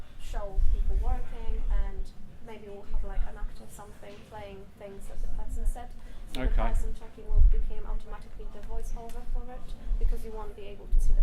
show people working, and maybe we'll have like an actor something playing things that the person said. So Okay. the person talking will become automatically the voiceover for it because you won't be able to see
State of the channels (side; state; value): both; identical; correlation 1.00